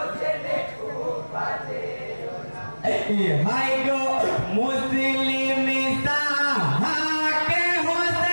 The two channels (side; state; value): both; inverted; correlation -1.00